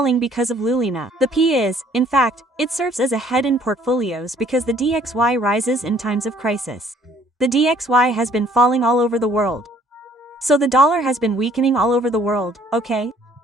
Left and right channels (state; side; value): normal; both; correlation 0.60